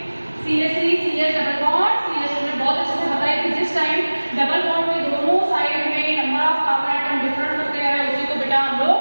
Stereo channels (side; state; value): both; inverted; correlation -1.00